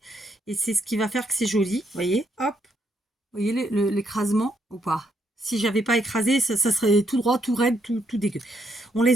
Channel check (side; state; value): both; normal; correlation 0.76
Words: Et c'est ce qui va faire que c'est joli. Vous voyez, hop. Vous voyez l'écrasement ou pas? Si j'avais pas écrasé, ça serait tout droit, tout raide, tout dégueu. On